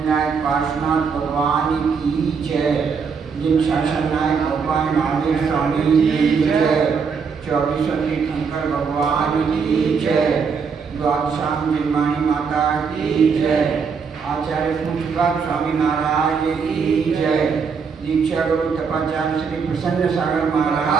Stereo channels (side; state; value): left; quieter; 5.8 dB